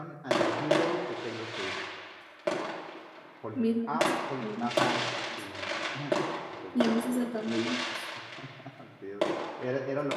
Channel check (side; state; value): both; identical; correlation 1.00